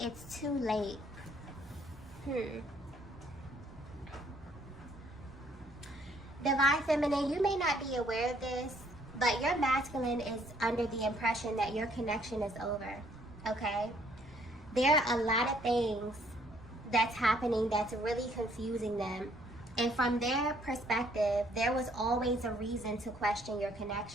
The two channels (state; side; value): noise; right; rumble, 21 dB below the sound